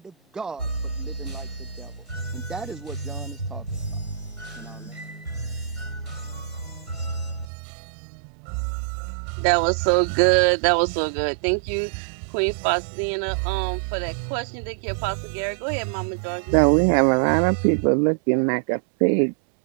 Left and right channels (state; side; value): drops out; left; at 7.5 s